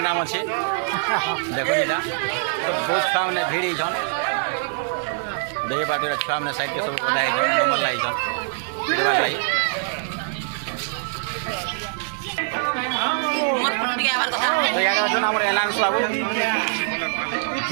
अच्छे देखो इधर तो बहुत छुआ मैंने भीड़ इधर देखे बात छुआ मैंने साइड के सब बधा नंबर लाई पीटवा लाई एलाउंस बाबू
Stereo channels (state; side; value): silent; left; digital silence